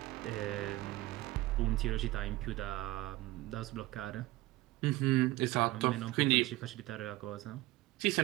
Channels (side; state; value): left; quieter; 18.4 dB